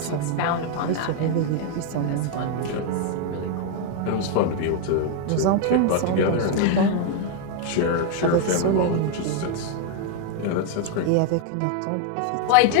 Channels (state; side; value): different; both; correlation 0.01